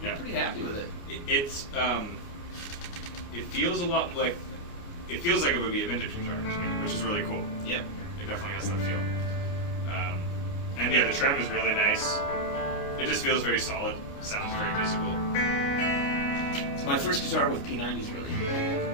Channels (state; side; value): late; right; 29 ms